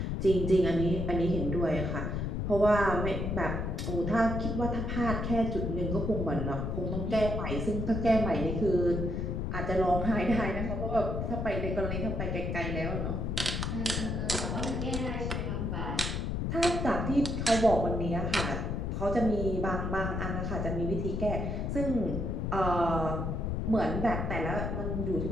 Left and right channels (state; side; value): noise; left; rumble, 1 dB below the sound